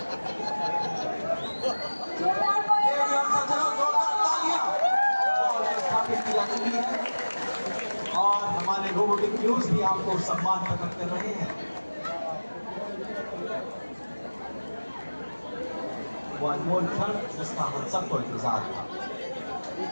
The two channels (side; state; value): both; inverted; correlation -1.00